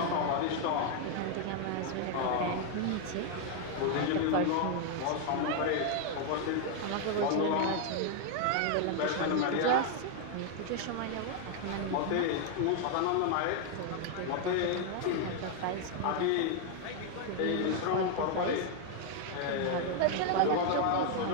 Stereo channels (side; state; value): both; different; correlation 0.00